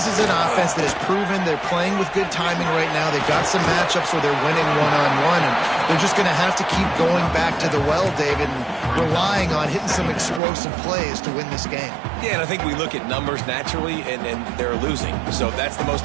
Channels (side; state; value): left; drops out; at 10.4 s